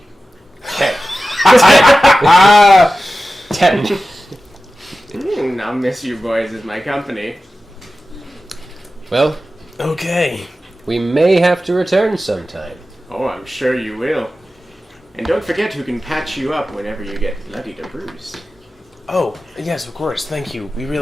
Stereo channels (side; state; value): both; normal; correlation 0.94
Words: Ah, 10. I'll miss you boys as my company. Well, okay. we may have to return sometime. Oh, I'm sure you will. And don't forget who can patch you up whenever you get bloodied or bruised. Oh, yes, of course. Thank you. We